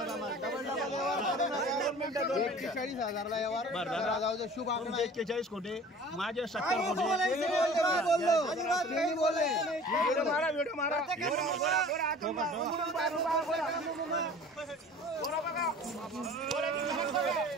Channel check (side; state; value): both; normal; correlation 0.45